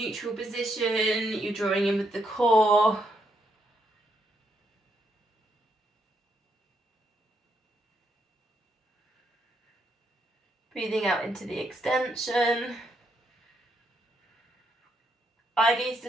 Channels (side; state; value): both; normal; correlation 0.77